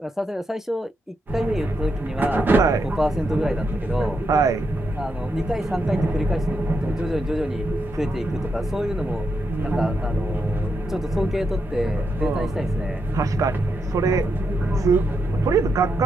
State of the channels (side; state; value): both; normal; correlation 0.83